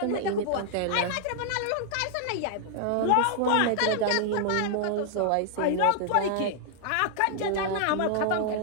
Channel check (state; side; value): different; both; correlation -0.01